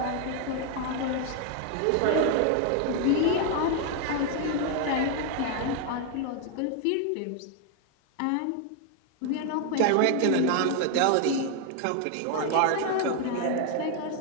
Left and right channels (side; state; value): both; different; correlation 0.00